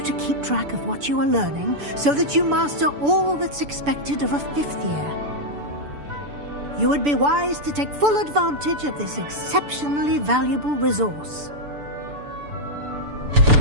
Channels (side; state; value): left; late; 6.9 ms